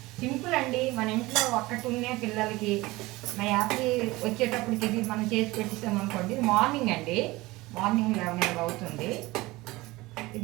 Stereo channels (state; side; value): quieter; left; 20.4 dB